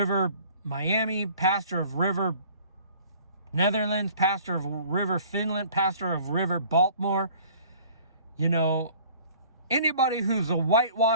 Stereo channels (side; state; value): both; inverted; correlation -0.51